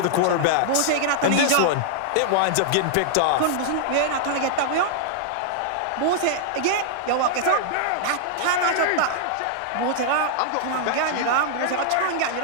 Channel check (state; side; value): different; both; correlation -0.01